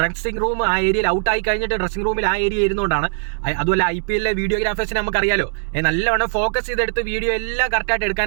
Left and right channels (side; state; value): left; silent; 63 dB below the other